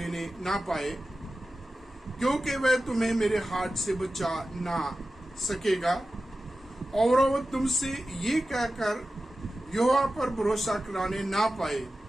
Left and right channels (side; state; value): both; normal; correlation 0.94